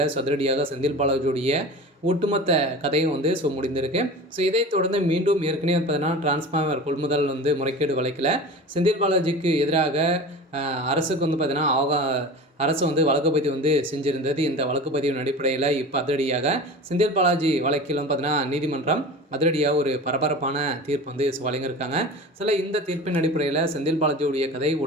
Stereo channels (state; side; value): normal; both; correlation 0.34